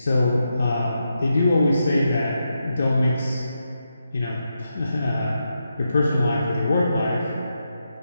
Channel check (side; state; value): both; inverted; correlation -0.85